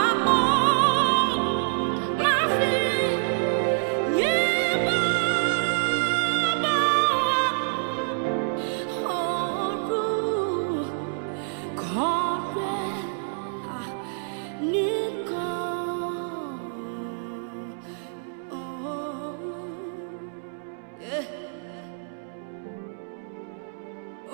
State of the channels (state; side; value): silent; left; 60 dB below the other